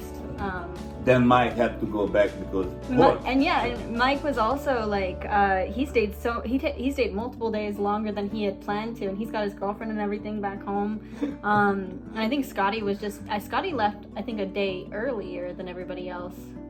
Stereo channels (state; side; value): identical; both; correlation 1.00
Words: Then Mike had to go back because and Mike was also like he stayed multiple days longer than he had planned to, and he's got his girlfriend and everything back home. And I think Scotty left I think a day earlier than everybody else,